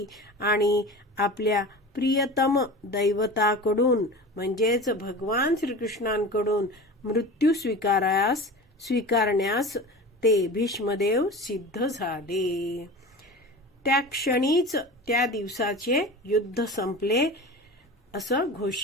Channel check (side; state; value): both; normal; correlation 0.33